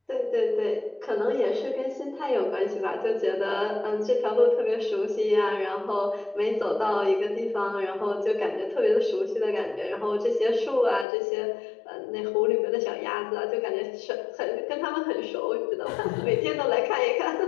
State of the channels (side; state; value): right; drops out; at 11.1 s